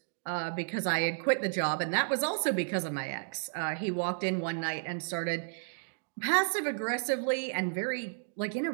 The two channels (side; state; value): left; silent; digital silence